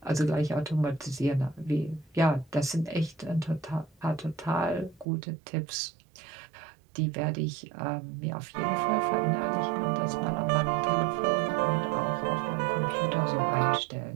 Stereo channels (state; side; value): drops out; left; at 5.1 s